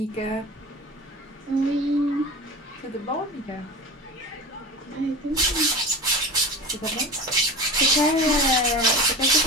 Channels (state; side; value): normal; both; correlation 0.31